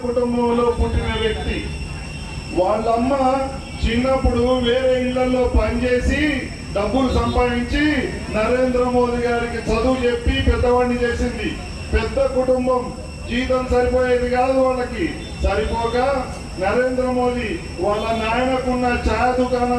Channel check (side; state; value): both; identical; correlation 1.00